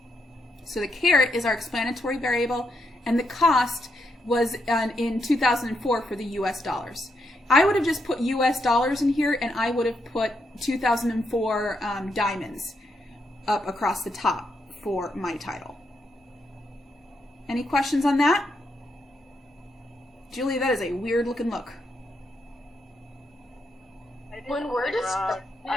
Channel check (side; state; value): both; normal; correlation 0.80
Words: So the carat is our explanatory variable, and the cost was in 2004 for the US dollars. I would have just put US dollars in here, and I would have put 2004 diamonds up across the top for my title. Any questions on that? Julie, that is a weird looking look. When we're just,